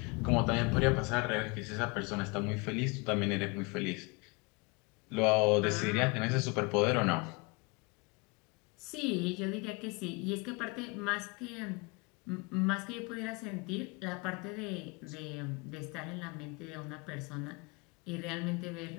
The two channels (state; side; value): quieter; right; 28.8 dB